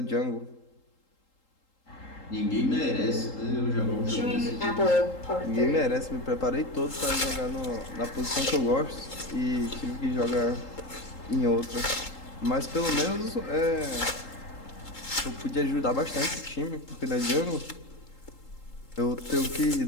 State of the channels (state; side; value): late; right; 3.8 ms